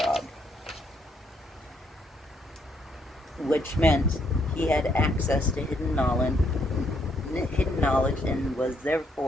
which meant he had access to hidden knowledge and was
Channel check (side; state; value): both; normal; correlation 0.72